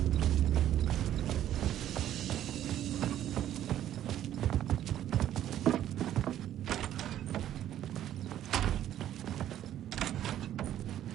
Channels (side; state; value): left; quieter; 11.7 dB